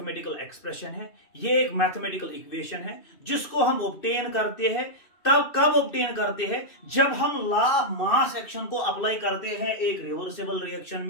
एक्सप्रेशन है, ये एक मैथमेटिकल इक्वेशन है जिसको हम ऑब्टेन करते हैं। तब कब ऑब्टेन करते हैं? जब हम लॉ ऑफ मास एक्शन को अप्लाई करते हैं एक रिवर्सिबल रिएक्शन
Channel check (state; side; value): late; right; 2.6 ms